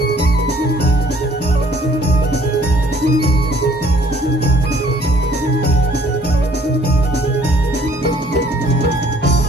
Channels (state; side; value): normal; both; correlation 0.58